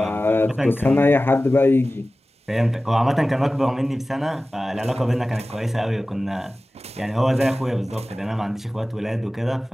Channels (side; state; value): both; normal; correlation 0.96